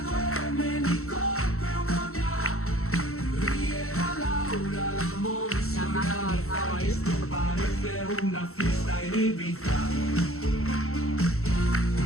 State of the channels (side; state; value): right; late; 0.63 ms